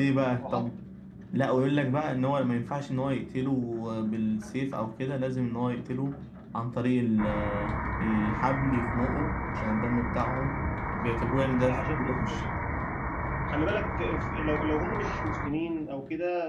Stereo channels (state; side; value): identical; both; correlation 1.00